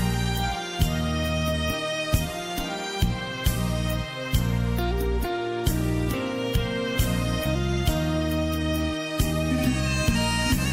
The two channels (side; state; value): both; identical; correlation 1.00